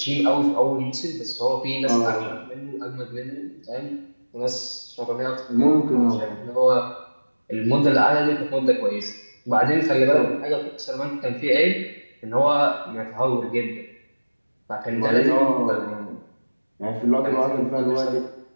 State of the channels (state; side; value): inverted; both; correlation -1.00